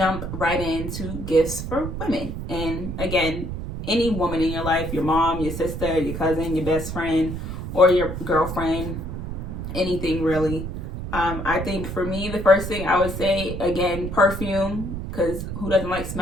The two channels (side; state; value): right; noise; rumble, 6 dB below the sound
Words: right into gifts for women. And again, any woman in your life, your mom, your sister, your cousin, your best friend, or your girlfriend, anything really. I think for me, the first thing I would say, again, perfume, because who doesn't like